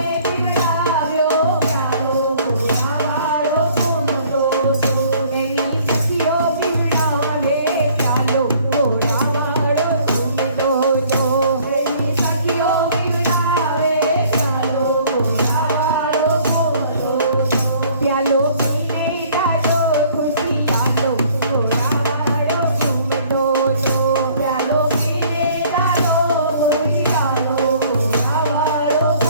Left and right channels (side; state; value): both; inverted; correlation -0.56